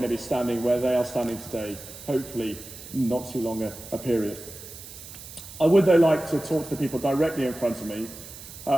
to be standing where they are standing today, hopefully not too long a period. I would though like to talk to the people directly in front of me.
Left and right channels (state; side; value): noise; right; hiss, 14 dB below the sound